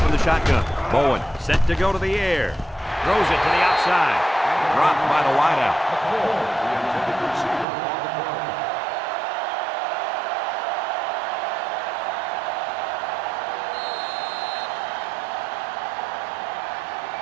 in the shotgun. Bowen set to go to the air. Throws it to the outside. Dropped by the wideout.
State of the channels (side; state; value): left; drops out; at 7.7 s